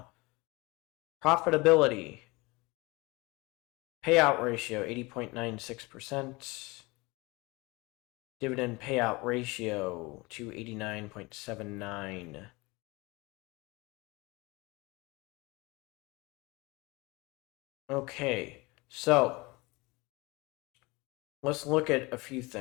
Profitability. Payout ratio 80.96%. Dividend payout ratio to 89.79. Okay, so let's look at a few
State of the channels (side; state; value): right; quieter; 24.2 dB